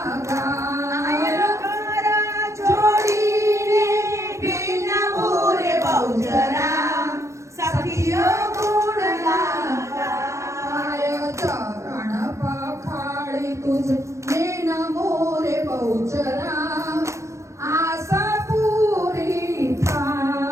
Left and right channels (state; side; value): late; left; 0.14 ms